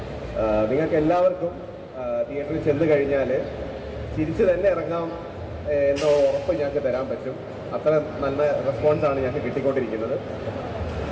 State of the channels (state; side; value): identical; both; correlation 1.00